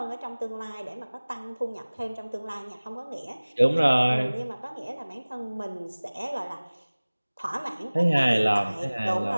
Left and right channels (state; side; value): inverted; both; correlation -1.00